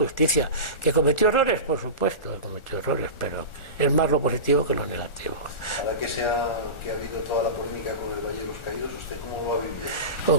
¿Que cometió errores? Por supuesto, cometió errores, pero es más lo positivo que lo negativo. Ahora que ha habido toda la polémica con el Valle de los Caídos, ¿usted cómo lo ha vivido? O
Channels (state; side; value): late; right; 1.4 ms